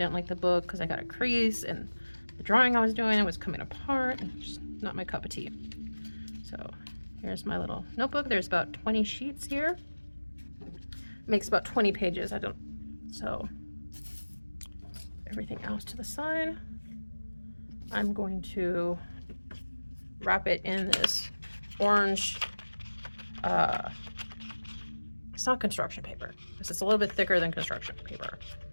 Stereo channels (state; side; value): inverted; both; correlation -1.00